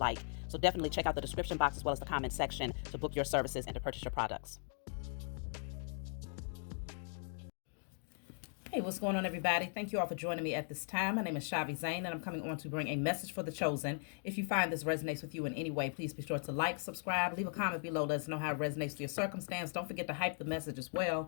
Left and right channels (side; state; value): right; silent; 52 dB below the other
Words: So definitely check out the description box as well as the comment section to book your services and to purchase your products. Hey, what's going on, everybody? Thank you all for joining me at this time. My name is chhaviZaine, and I'm coming on to bring a message for the chosen. If you find this resonates with you in any way, please be sure to like, subscribe, leave a comment below. Let us know how it resonates with your circumstance. Don't forget to hype the message as